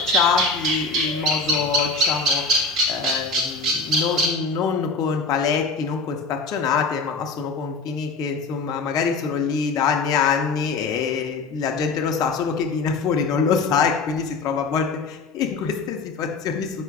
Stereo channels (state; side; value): quieter; right; 4.1 dB